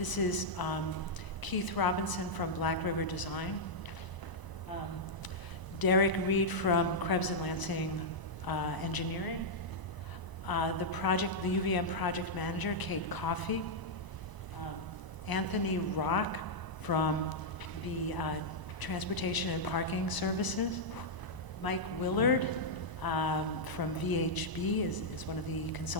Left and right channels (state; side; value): late; right; 1.0 ms